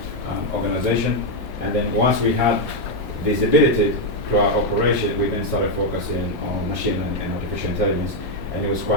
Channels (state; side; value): normal; both; correlation 0.02